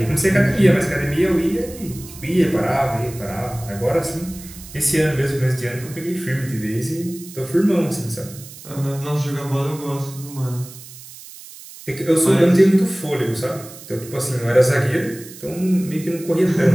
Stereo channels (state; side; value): noise; right; hiss, 17 dB below the sound